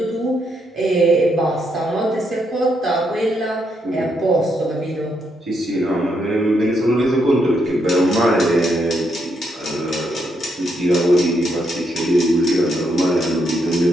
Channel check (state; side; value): normal; both; correlation 0.78